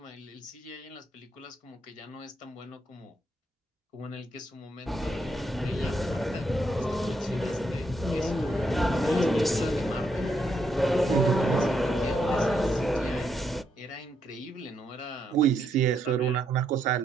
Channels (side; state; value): both; normal; correlation 0.77